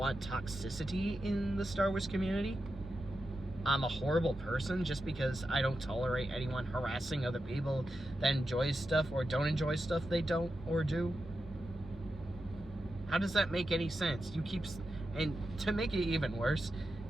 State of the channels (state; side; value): normal; both; correlation 0.89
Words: toxicity in the Star Wars community? I'm a horrible person just because I don't tolerate anyone harassing other people that enjoy stuff or don't enjoy stuff they don't or do? How does that make any sense? And to make it even worse,